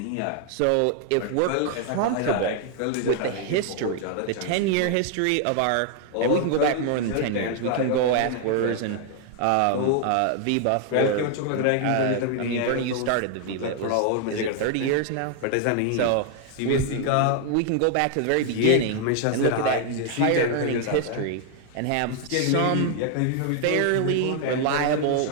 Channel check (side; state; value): both; different; correlation 0.00